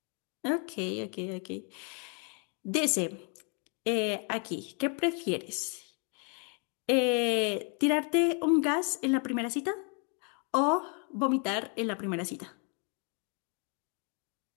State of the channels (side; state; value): right; quieter; 37.2 dB